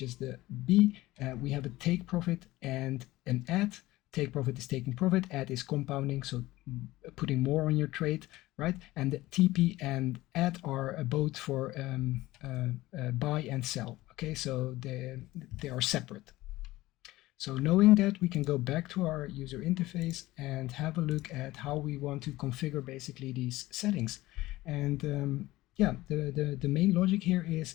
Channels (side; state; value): right; quieter; 18.0 dB